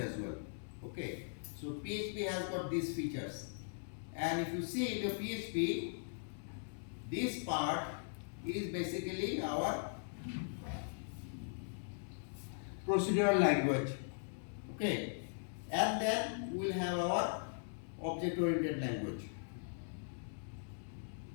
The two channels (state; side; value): silent; right; digital silence